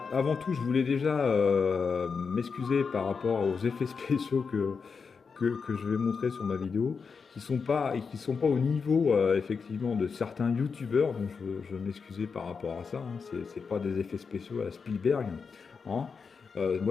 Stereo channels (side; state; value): right; quieter; 5.4 dB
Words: avant tout, je voulais déjà m'excuser par rapport aux effets spéciaux que je vais montrer sur ma vidéo, qui sont pas au niveau effectivement de certains youtubeurs, donc je vais m'excuser par rapport à ça, hein. C'est pas des effets spéciaux à la Spielberg, hein.